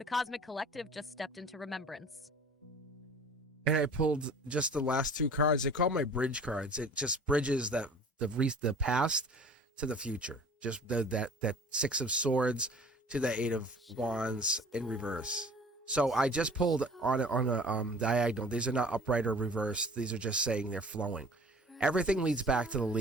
Cosmic Collective just stepped into remembrance. And I pulled just the last 2 cards. They call my bridge cards. It just bridges the past to the future. Just that 6 of Swords to the 8 of Wands in reverse. So I just pulled on a diagonal. These are not upright or reverse. These are just saying they're flowing. Everything leads back to the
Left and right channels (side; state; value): both; normal; correlation 0.46